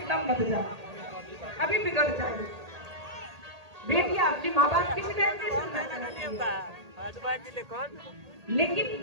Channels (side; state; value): left; late; 1.8 ms